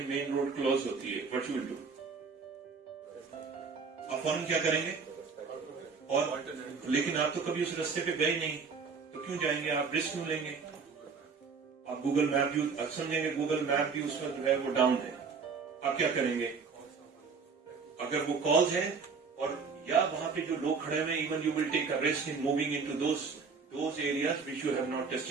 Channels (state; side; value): quieter; left; 5.2 dB